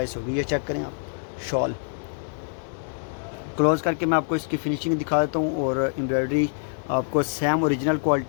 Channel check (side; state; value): right; silent; digital silence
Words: होगी। ये चेक करें आप शॉल। क्लोज़ करके मैं आपको इसकी फिनिशिंग दिखा देता हूँ, और एम्ब्रॉयडरी आपको सेम ओरिजिनल